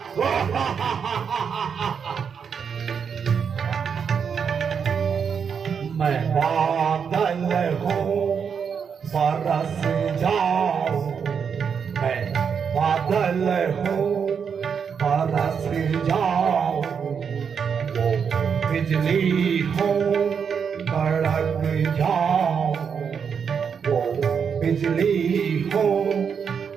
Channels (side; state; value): left; quieter; 6.7 dB